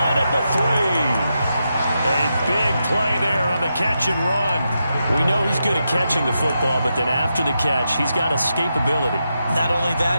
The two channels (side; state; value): both; inverted; correlation -0.86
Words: at the 3. A big play there on the catch and run. We know he's good at catching the football, but then after the catch, he's got escapability. Not only